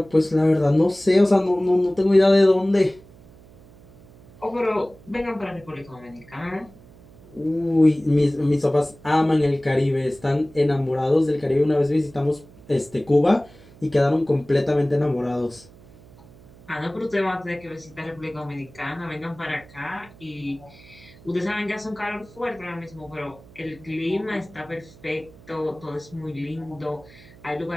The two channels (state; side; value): noise; right; hum, 23 dB below the sound